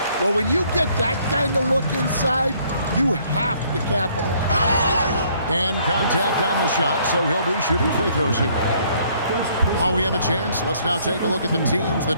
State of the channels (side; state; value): both; inverted; correlation -0.63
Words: Well, when you get that kind of look inside, you have to capitalize. And contact on the shot, so he'll be shooting free throws here. While we have a chance, let's now take a look at the teams